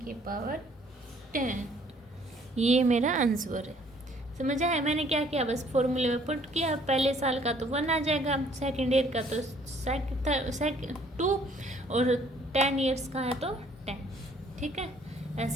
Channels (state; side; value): normal; both; correlation 0.60